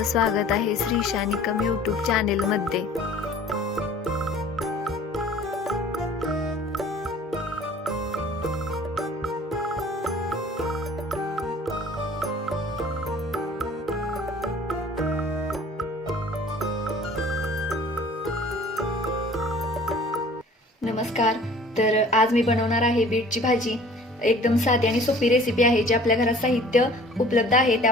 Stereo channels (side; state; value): both; normal; correlation 0.49